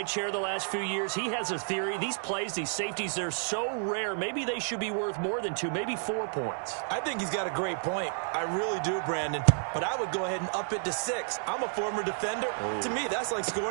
chair the last few years, he has a theory. These plays, these safeties, they're so rare. Maybe they should be worth more than 2, maybe 4 points. I think he's got a great point. I really do, Brandon. But I would go ahead and up it to 6. I'm a former defender. To me, that's like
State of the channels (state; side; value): silent; left; 57 dB below the other